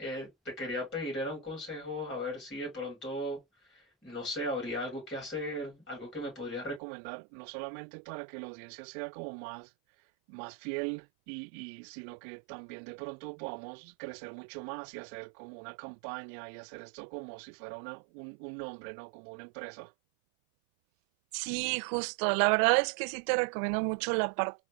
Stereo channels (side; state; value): left; drops out; at 6.8 s